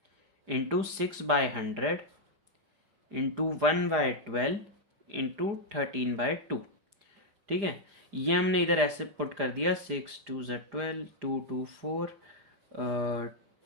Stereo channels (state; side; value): late; left; 4.9 ms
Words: इंटू 6/100 इंटू 1/12 इंटू 13/2। ठीक है, ये हमने इधर ऐसे पुट कर दिया, 6 2 12 2 2 4